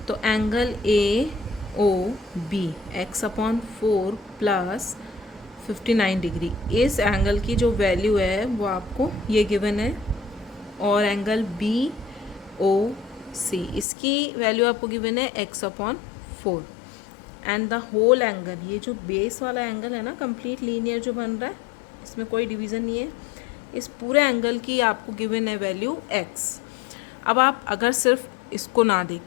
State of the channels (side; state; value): right; drops out; at 13.9 s